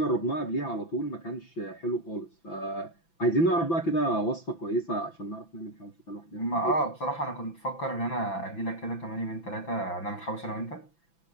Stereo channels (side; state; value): right; late; 6.0 ms